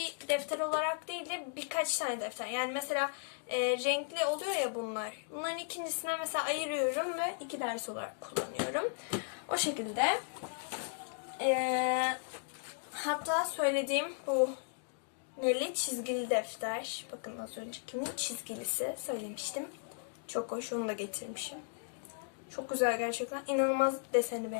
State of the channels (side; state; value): right; silent; digital silence